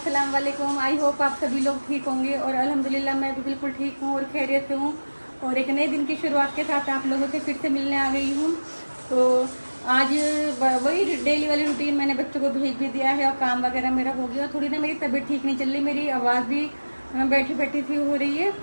वालेकुम। आई होप आप सभी लोग ठीक होंगे और अल्हम्दुलिल्लाह मैं भी बिल्कुल ठीक हूँ और खैरियत से हूँ। और एक नए दिन की शुरुआत के साथ आप लोगों से फिर से मिलने आ गई हूँ। तो आज वही डेली वाली रूटीन, मैंने बच्चों को भेज भी दिया है और काम वगैरह मेरा हो गया। थोड़ी ना मेरी तबीयत ठीक नहीं चल रही, मेरी आवाज़ भी बैठी बैठी सी हो रही है,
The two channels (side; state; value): both; inverted; correlation -1.00